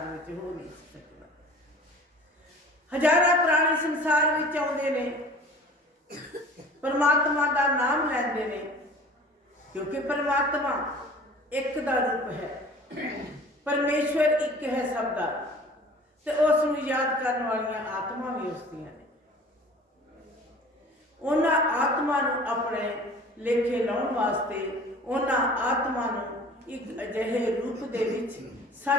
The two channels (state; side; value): normal; both; correlation 0.45